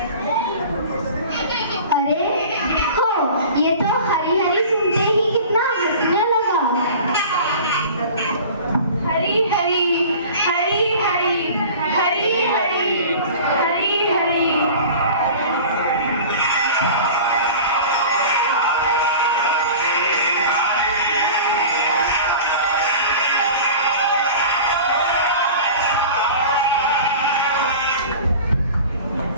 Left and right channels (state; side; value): inverted; both; correlation -0.39